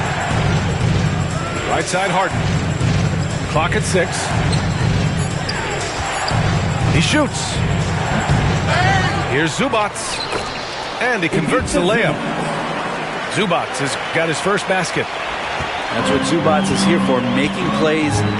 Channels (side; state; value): both; identical; correlation 1.00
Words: Right side Harden. Clock at 6. He shoots. Here's Zubac. And he converts the layup. Zubac has got his first basket. That's what Zubac is here for, making plays